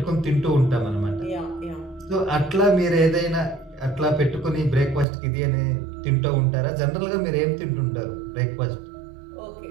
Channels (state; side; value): drops out; left; at 5.1 s